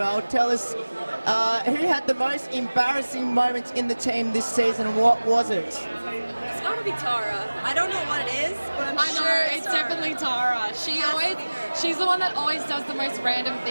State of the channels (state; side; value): inverted; both; correlation -1.00